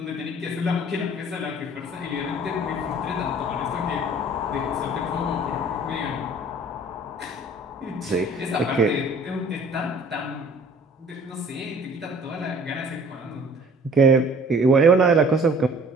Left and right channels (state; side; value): normal; both; correlation 0.51